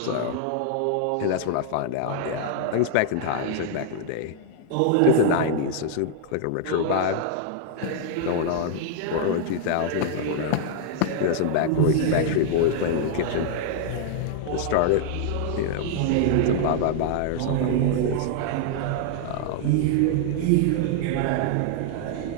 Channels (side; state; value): both; different; correlation -0.01